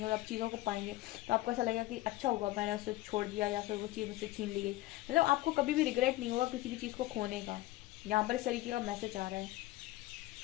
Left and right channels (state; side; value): quieter; right; 17.6 dB